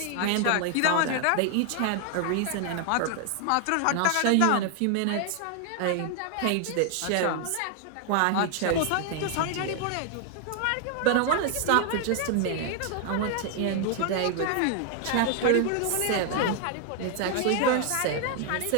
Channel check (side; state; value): both; different; correlation 0.00